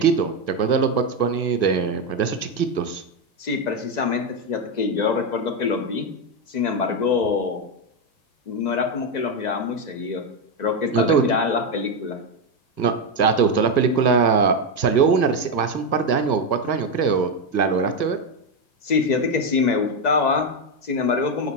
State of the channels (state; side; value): late; right; 1.5 ms